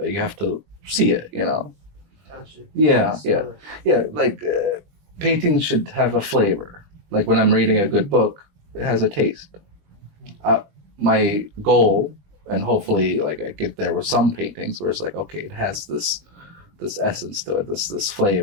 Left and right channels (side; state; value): left; late; 20 ms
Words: it. You have to see it. Touch it. Yeah. Smell Yeah. Like painting should have a flavor. Like when I'm reading a good book, it has a taste. My goal, and hopefully like I get there with some paintings, where it's like, okay, it has this essence to it, this